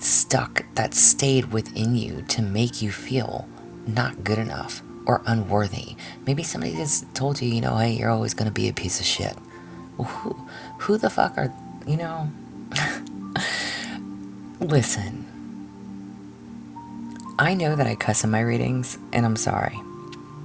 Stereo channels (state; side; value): identical; both; correlation 1.00